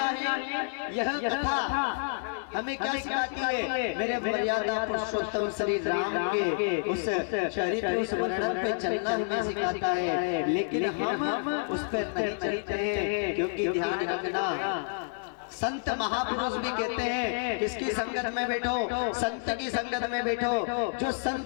यह कथा हमें क्या सिखाती है? मेरे मर्यादा पुरुषोत्तम श्री राम के उस चरित्र उस वर्णन पे चलना हमें सिखाता है। लेकिन हम उस पर नहीं चलते हैं, क्योंकि ध्यान रखना संत महापुरुष भी कहते हैं किसकी संगत में बैठो? संत की संगत में बैठो। जो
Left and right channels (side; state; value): right; silent; 58 dB below the other